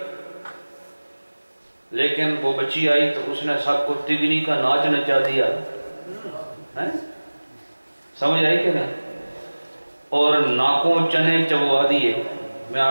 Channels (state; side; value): inverted; both; correlation -1.00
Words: لیکن وہ بچی آئی تو اس نے سب کو تگنی کا ناچ نچا دیا، سمجھ آئی کہ نہیں؟ اور ناکوں چنے چبوا دیے، میں